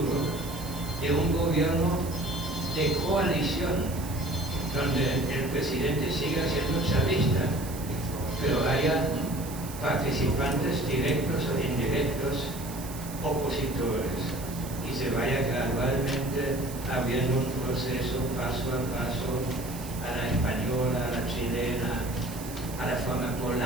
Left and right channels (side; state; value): right; noise; hiss, 13 dB below the sound